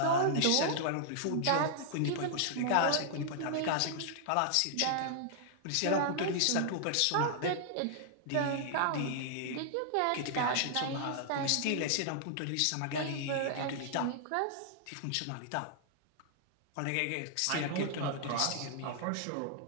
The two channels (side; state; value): both; different; correlation -0.01